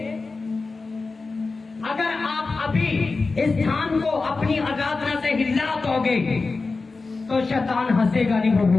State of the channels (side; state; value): right; quieter; 3.9 dB